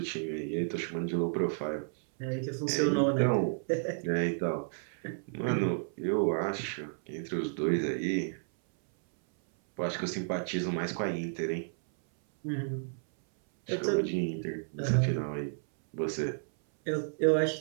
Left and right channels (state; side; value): silent; left; 57 dB below the other